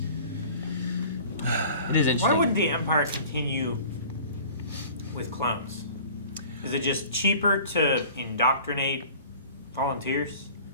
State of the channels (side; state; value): both; inverted; correlation -0.45